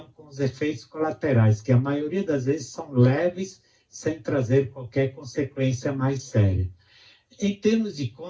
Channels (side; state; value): both; identical; correlation 1.00